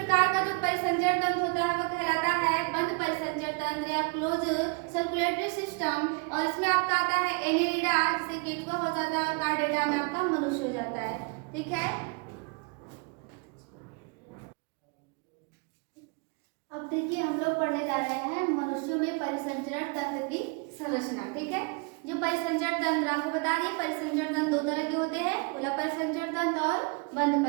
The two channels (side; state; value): left; quieter; 31.9 dB